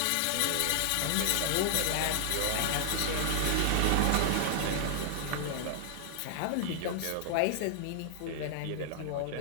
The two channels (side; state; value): both; different; correlation -0.01